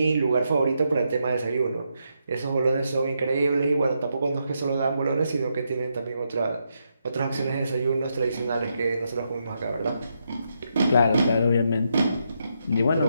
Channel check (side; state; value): both; inverted; correlation -0.81